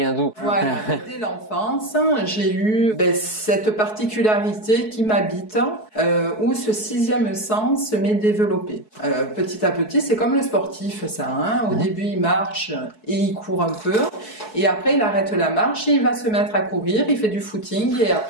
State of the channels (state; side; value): late; right; 4.7 ms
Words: d'où? Voilà, dès l'enfance, j'ai eu cette particularité qui m'habite, où ce sixième sens m'est développé. Petit à petit, c'est comme le sportif, ça. Au début, il marche et il court un peu, et après, il arrête la marche et il va se mettre à courir, il fait du footing et